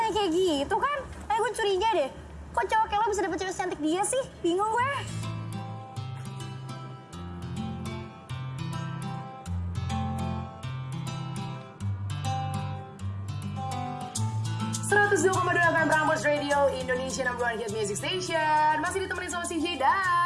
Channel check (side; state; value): both; identical; correlation 1.00